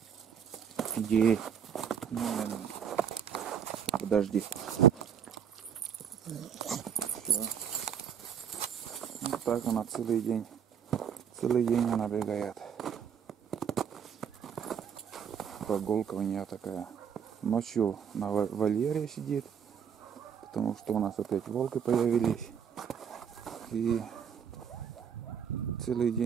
Иди. Подожди. Все. Вот так она целый день. Целый день она бегает. Прогулка у нее такая. Ночью на вольере сидит, потому что у нас опять волки появились. И целый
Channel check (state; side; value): quieter; left; 7.9 dB